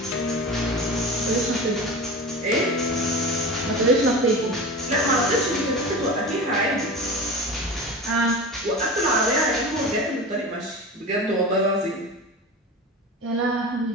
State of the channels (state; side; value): normal; both; correlation 0.30